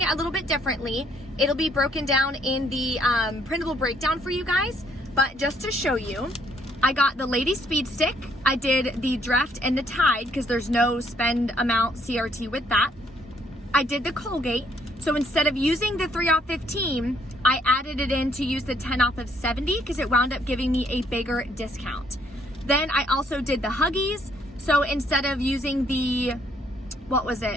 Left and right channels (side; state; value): both; normal; correlation 0.67